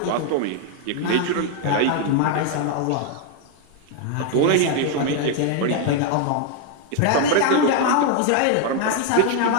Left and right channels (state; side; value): different; both; correlation 0.00